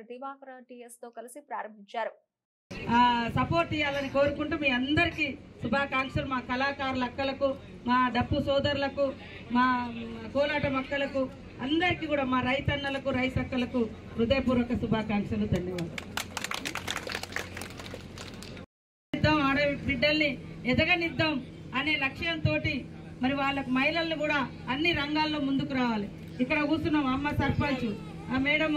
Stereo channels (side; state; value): both; identical; correlation 1.00